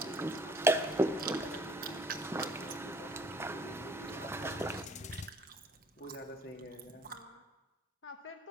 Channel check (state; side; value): normal; both; correlation 0.56